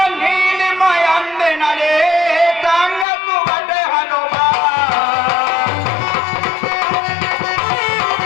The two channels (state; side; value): drops out; right; at 3.1 s